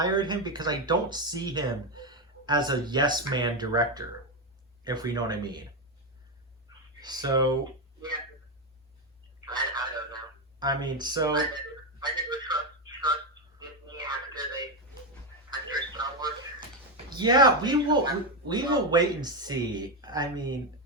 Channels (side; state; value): both; normal; correlation 0.08